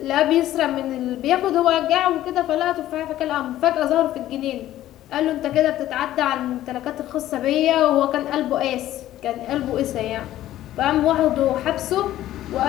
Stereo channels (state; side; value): quieter; right; 13.7 dB